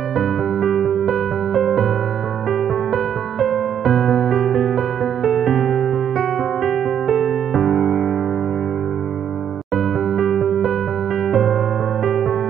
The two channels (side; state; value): left; quieter; 9.0 dB